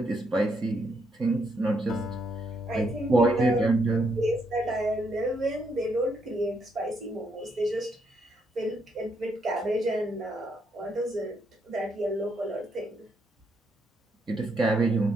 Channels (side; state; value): both; normal; correlation 0.76